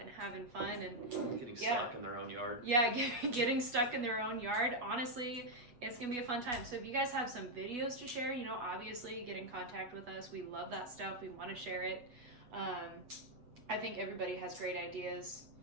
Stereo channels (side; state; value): left; late; 8.2 ms